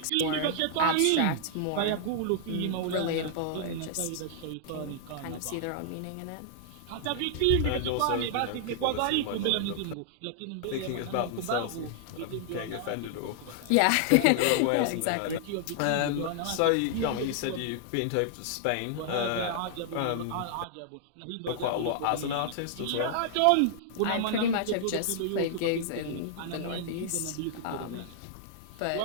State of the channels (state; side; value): different; both; correlation -0.01